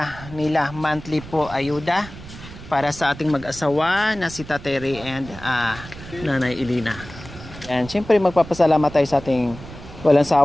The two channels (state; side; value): noise; right; rumble, 15 dB below the sound